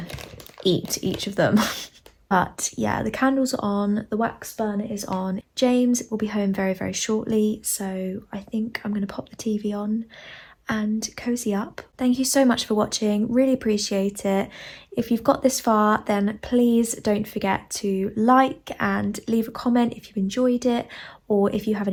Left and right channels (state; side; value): identical; both; correlation 1.00